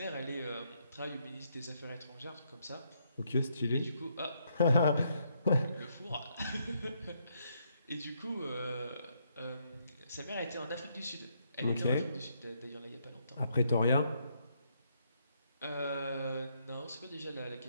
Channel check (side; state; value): both; inverted; correlation -0.74